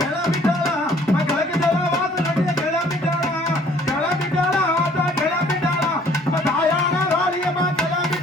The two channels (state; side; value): normal; both; correlation 0.57